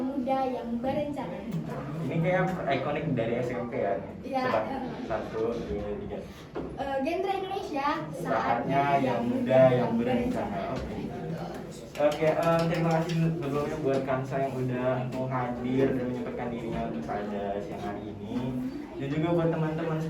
muda yang berencana. Ini kayak ikonik dari SMP ya. Iya. Coba 1, 2, 3. Genre Indonesia. Saatnya yang muda yang berencana. Oke, terima kasih sebelumnya buat Kansa yang udah mau hadir dan menyempatkan dirinya untuk pada siang hari ini. Dan juga buat teman-teman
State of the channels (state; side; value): identical; both; correlation 1.00